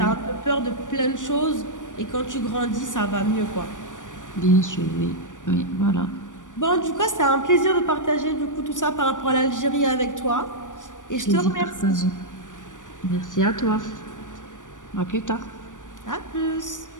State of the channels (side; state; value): right; late; 0.87 ms